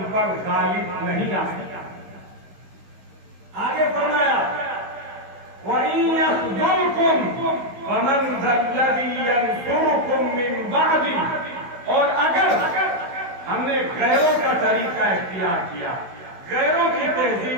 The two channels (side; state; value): left; late; 16 ms